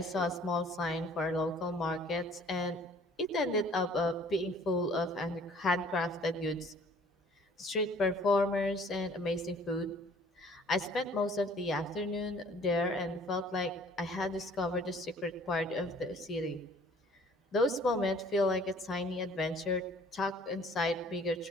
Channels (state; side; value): normal; both; correlation 0.55